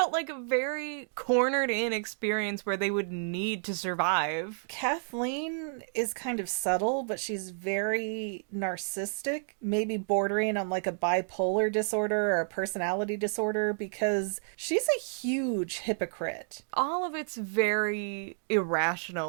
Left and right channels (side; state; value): left; silent; digital silence